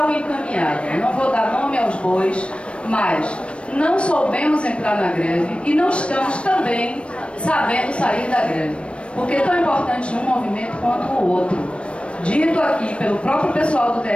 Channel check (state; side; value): late; right; 0.060 ms